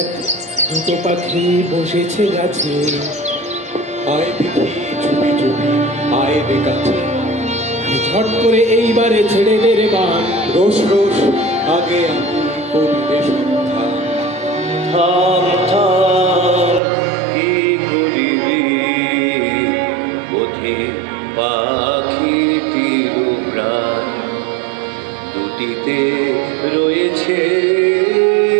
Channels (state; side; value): drops out; left; at 16.8 s